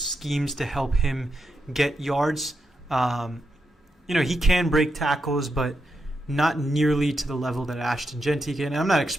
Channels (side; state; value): both; normal; correlation 0.85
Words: to help him get yards. He can break tackles, but not nearly to the level that Ashton Jeanty can. And I'm not